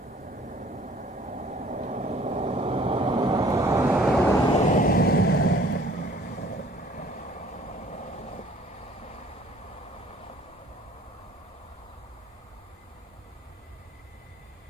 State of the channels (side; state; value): both; normal; correlation 0.55